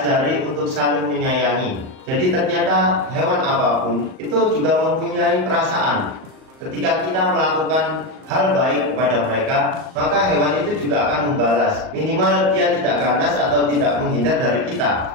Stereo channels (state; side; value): late; left; 38 ms